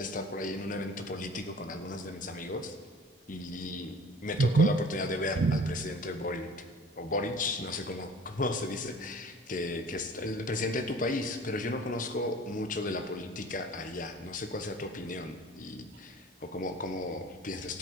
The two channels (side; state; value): both; normal; correlation 0.46